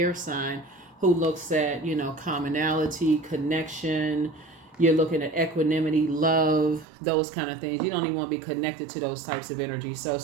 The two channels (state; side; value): drops out; left; at 6.9 s